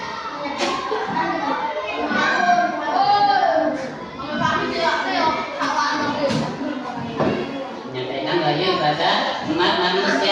Menyampaikan wahyu pada umat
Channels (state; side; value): identical; both; correlation 1.00